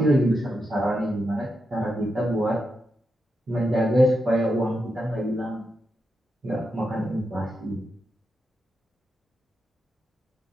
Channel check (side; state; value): both; normal; correlation 0.86